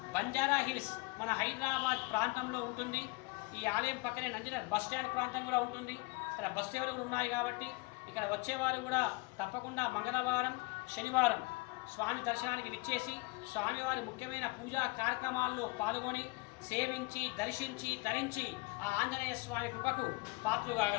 Banjara hills మన హైదరాబాద్ ప్రాంతంలో ఉంటుంది. ఈ ఆలయం పక్కనే నందీనగర్ బస్ స్టాండ్ ప్రాంతం కూడా ఉంటుంది. ఇక్కడ బస్ సేవలు కూడా ఉన్నాయి కాబట్టి ఇక్కడ వచ్చేవారు కూడా తప్పకుండా మంగళవారం, శనివారం స్వామి దర్శనానికి విచ్చేసి స్వామివారి ముఖ్యమైన పూజా కార్యక్రమాల్లో పాల్గొని సేవించి, దర్శించి, ధరించి ఆ ఆంజనేయ స్వామి కృపకు పాత్రులు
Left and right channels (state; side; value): quieter; right; 27.4 dB